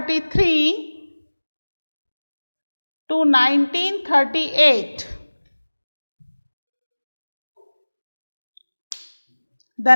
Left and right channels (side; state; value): both; inverted; correlation -1.00